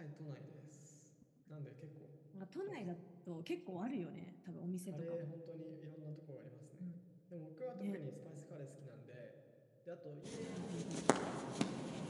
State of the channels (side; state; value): both; identical; correlation 1.00